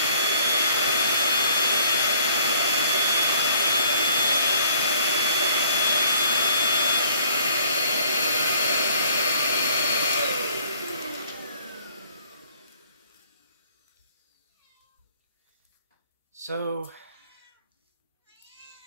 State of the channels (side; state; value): both; inverted; correlation -0.57